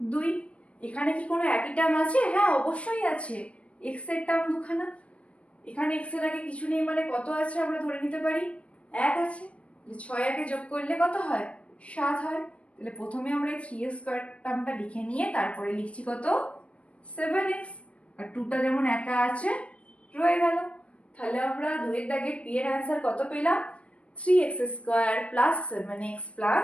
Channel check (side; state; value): right; late; 0.062 ms